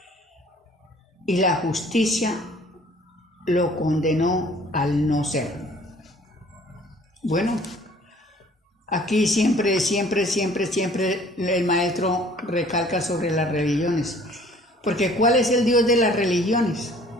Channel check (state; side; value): normal; both; correlation 0.54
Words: y la justicia lo condenó al no ser. Bueno, aquí siempre el maestro recalca sobre las religiones. Porque ¿cuál es el Dios de las religiones?